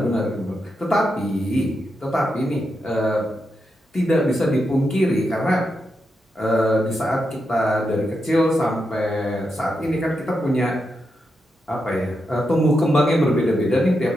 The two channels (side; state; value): both; normal; correlation 0.85